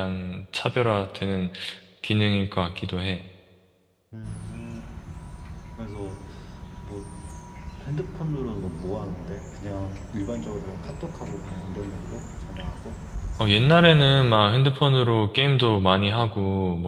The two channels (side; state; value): both; identical; correlation 1.00